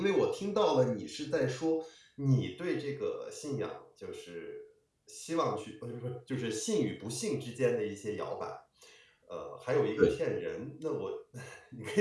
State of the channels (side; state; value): both; identical; correlation 1.00